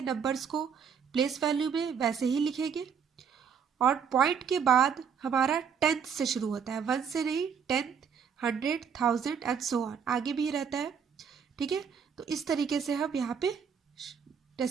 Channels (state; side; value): quieter; left; 7.0 dB